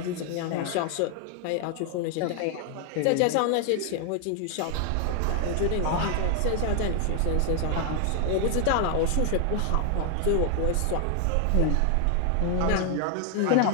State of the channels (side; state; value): both; different; correlation 0.00